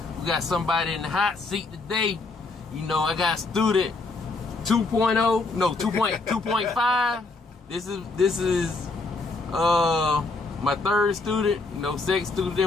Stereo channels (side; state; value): right; quieter; 3.6 dB